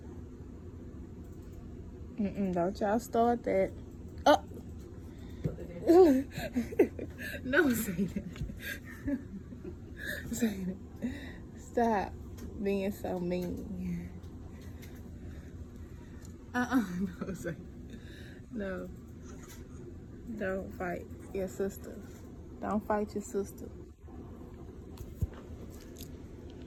Don't y'all start that. Oh. No, say that. Say that. Stop being so mean. No, say no. Don't fight your sister. Don't fight your sister.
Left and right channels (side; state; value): both; identical; correlation 1.00